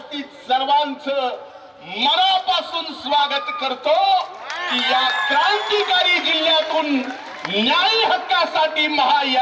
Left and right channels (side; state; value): both; identical; correlation 1.00